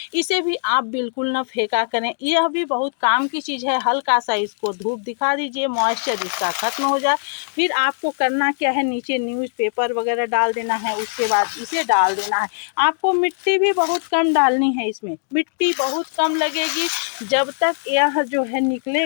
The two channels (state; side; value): silent; right; digital silence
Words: इसे भी आप बिल्कुल ना फेंका करें, यह भी बहुत काम की चीज़ है। हल्का सा इसको धूप दिखा दीजिए, मॉइस्चर इसका खत्म हो जाए। फिर आपको करना क्या है, नीचे न्यूज़पेपर वगैरह डाल देना है, उसके बाद इसे डाल देना है। आपको मिट्टी भी बहुत कम डालनी है, इसमें मिट्टी बहुत कम लगेगी। जब तक यह जो है